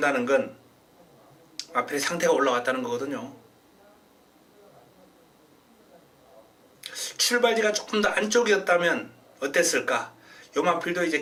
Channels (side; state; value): both; identical; correlation 1.00